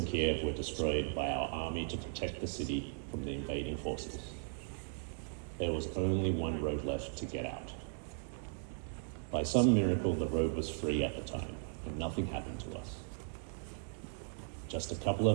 Kiev were destroyed by our army to protect the city from the invading forces. There was only one road left to get out. By some miracle, the road was free at the time, and nothing happened to us. Just a couple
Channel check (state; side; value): silent; left; 53 dB below the other